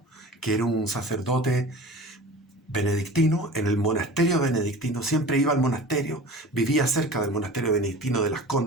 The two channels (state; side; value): normal; both; correlation 0.38